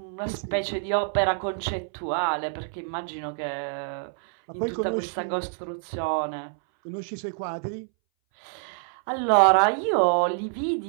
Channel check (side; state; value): left; silent; 60 dB below the other